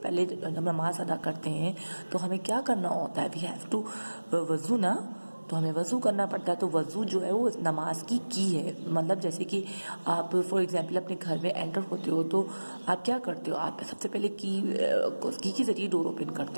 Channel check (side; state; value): both; inverted; correlation -1.00